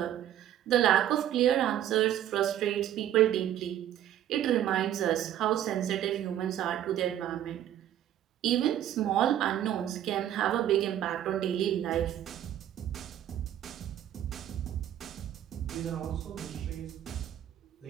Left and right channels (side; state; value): left; quieter; 11.4 dB